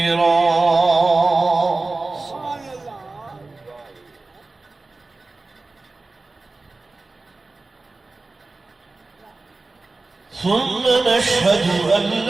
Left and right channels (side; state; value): left; quieter; 3.4 dB